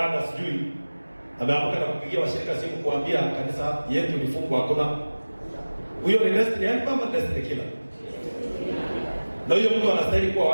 sijui ameamka na kupigia washirika simu kuambia kanisa yetu ni fungu hakuna. Huyo ni destiny helper ama destiny killer? Na huyo mtu anastahili kuwa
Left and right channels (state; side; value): inverted; both; correlation -1.00